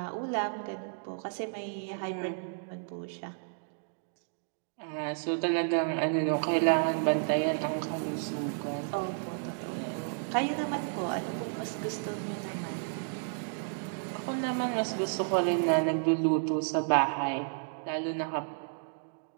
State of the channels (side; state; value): left; silent; digital silence